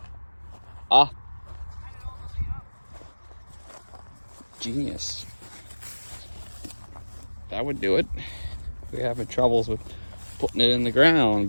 Ah. Genius. That would do it. We're having troubles with putting it in the ground,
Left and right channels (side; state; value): both; inverted; correlation -1.00